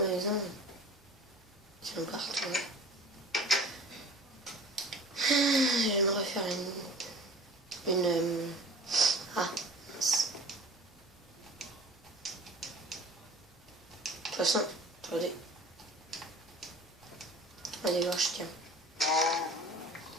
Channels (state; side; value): normal; both; correlation 0.43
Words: maison? Tiens, partout. J'aimerais faire une... Ah, mince. De toute façon, attendez. Allez voir, je tiens.